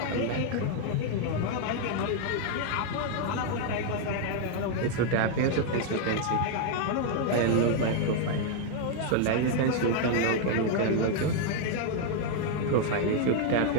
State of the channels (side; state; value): both; different; correlation 0.00